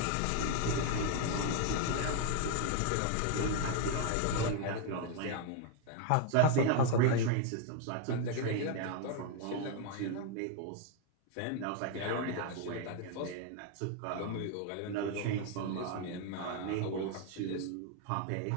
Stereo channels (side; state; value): both; different; correlation 0.01